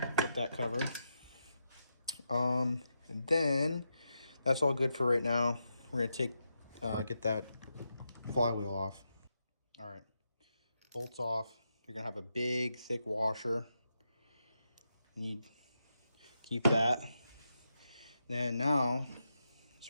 with that cover. And then that's all good for right now. We're gonna get that flywheel off. All right, bolts off. You're gonna have a big, thick washer. You need to keep that. Then now is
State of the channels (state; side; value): inverted; both; correlation -0.85